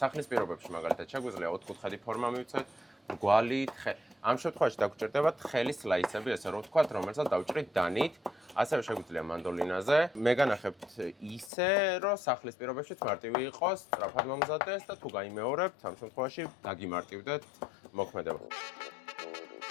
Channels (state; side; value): drops out; right; at 11.5 s